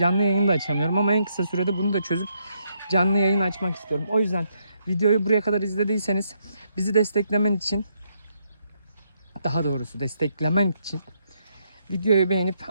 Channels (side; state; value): both; inverted; correlation -0.76